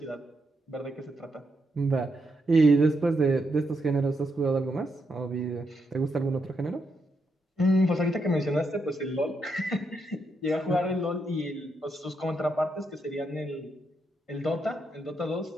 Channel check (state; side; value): normal; both; correlation 0.81